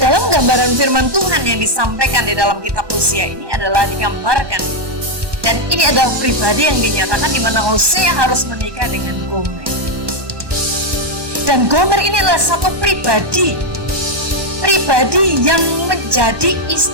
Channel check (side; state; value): left; late; 1.2 ms